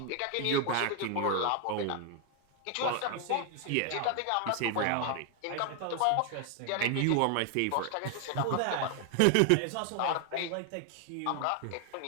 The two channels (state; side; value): different; both; correlation 0.00